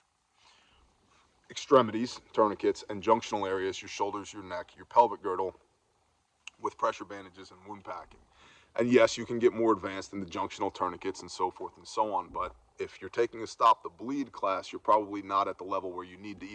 Extremities, tourniquets, and junctional areas, your shoulders, your neck, your pelvic girdle, with pressure bandages and wound packing. And yes, you can get more advanced in the junctional tourniquets and so forth and so on, but if you're taking a Stop the Bleed class, you're probably not at the level where you need to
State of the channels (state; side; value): identical; both; correlation 1.00